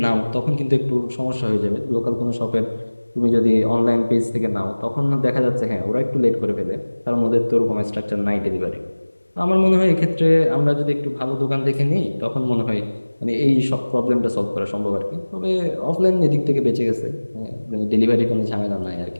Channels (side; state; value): both; inverted; correlation -1.00